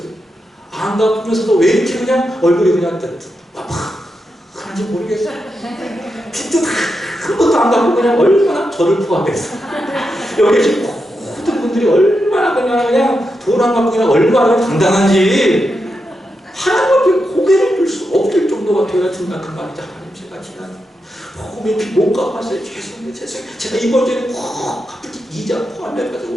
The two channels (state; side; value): normal; both; correlation 0.86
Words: 안 갚으면서도 왜 이렇게 그냥 얼굴이 그냥 하는지 모르겠어요. 빚도 한 번도 안 갚고 그냥 얼마나 저를 포함해서 여기 지금 모든 분들이 얼마나 그냥 돈 안 갚고 그냥 얼마나 당당한지 하나님 앞에 고개를 들 수 없을 정도가 되어야 생각한 말이죠. 하나님 제가 지난 복음의 빚 못 갚았어요. 죄송해요. 제가 이번 주에 꼭 갚을게. 이자